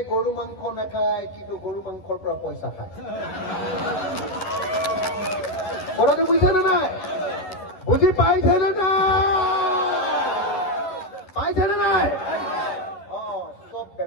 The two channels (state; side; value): late; right; 11 ms